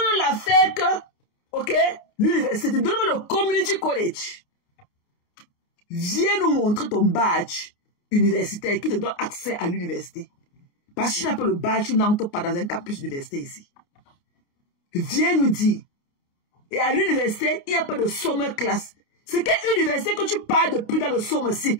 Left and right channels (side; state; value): right; late; 28 ms